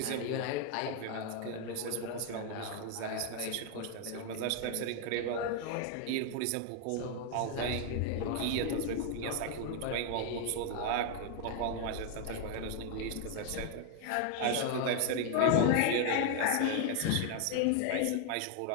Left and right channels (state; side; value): different; both; correlation 0.00